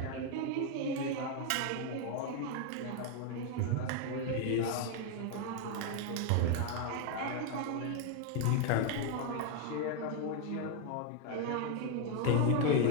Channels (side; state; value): both; different; correlation 0.01